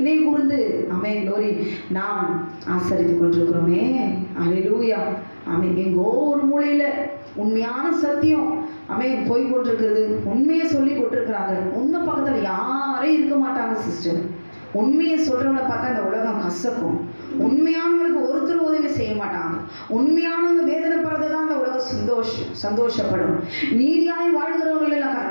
கூர்ந்து க்ளோரி நாம் ஆசரித்துக் கொண்டிருக்கிறோமே. அல்லேலூயா. எங்கோ ஒரு மூலையில உண்மையான சத்தியம் போய் கொண்டிருக்கிறது. உண்மையை சொல்லி கொண்டிருக்கிறாங்க. உண்மை பக்கத்துல யாரும் இருக்க மாட்டாங்க சிஸ்டர். உண்மையை சொல்றவங்களை பார்த்தா இந்த உலகம் கசக்கும். உண்மையானவங்களுக்கு ஒருத்தர் உதவி செய்ய மாட்டாங்க. உண்மையானவங்க வேதனைப்படுறதுதான் இந்த உலகம் சந்தோஷப்படும். நீதியாய் வாழ்கிறவங்க எல்லாம்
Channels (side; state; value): both; inverted; correlation -1.00